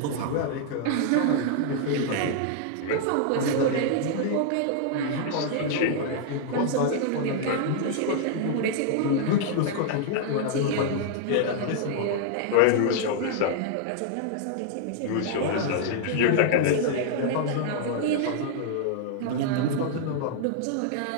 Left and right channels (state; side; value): different; both; correlation -0.01